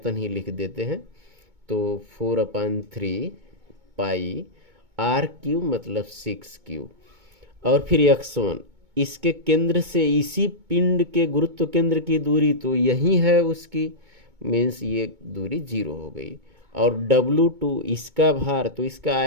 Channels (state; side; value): late; left; 2.2 ms